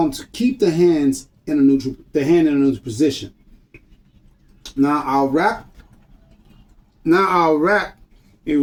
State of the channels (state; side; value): identical; both; correlation 1.00